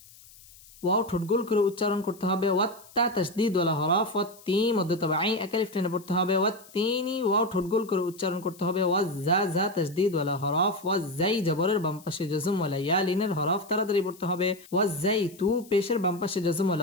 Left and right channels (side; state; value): left; noise; hiss, 23 dB below the sound